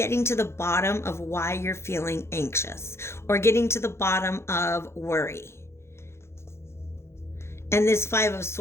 to the bottom of why you're feeling anxious, or getting to the bottom of worry. And this Five of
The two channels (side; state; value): right; late; 0.13 ms